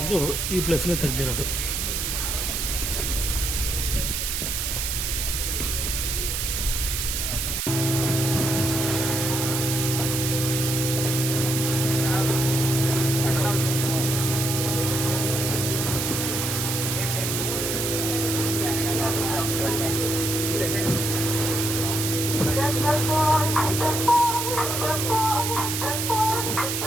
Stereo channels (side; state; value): right; noise; hiss, 1 dB below the sound